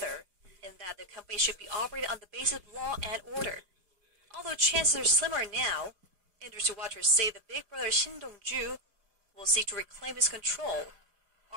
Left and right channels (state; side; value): late; left; 4.8 ms